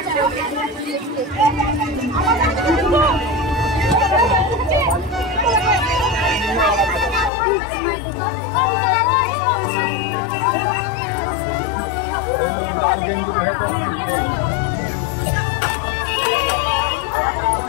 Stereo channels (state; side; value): drops out; right; at 7.3 s